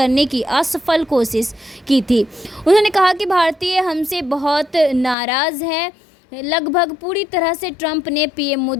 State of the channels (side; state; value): right; drops out; at 5.2 s